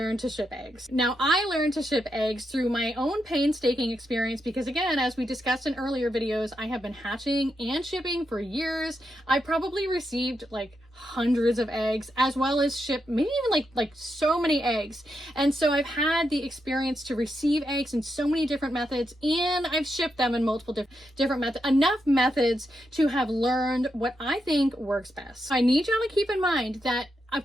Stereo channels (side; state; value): both; normal; correlation 0.84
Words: to ship eggs. Now, I learned to ship eggs through my own painstaking experience because, again, as we discussed in earlier videos, I have been hatching and shipping for years. I probably received like hundreds of eggs, as well as ship maybe even like so many eggs. And so I've had the experience to receive eggs in so many different methods, and I've shipped them in multiple different methods, enough methods to have learned what I think works best. I need y'all to keep in mind that of